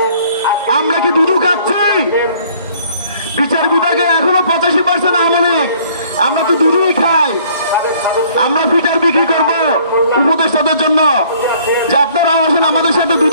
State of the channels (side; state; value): both; inverted; correlation -0.58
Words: আমরা কি দুধু খাচ্ছি? বিচার বিভাগে এখনো 85% আমলিক। আমরা তো দুধুই খাই। আমরা ফিটার বিক্রি করবো উপদেষ্টাদের জন্য যে আপনারা আসেন আমাদের সাথে